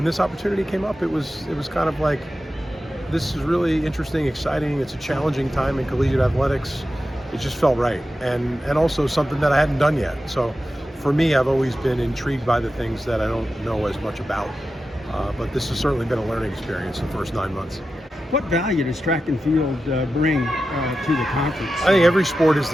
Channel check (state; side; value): normal; both; correlation 0.91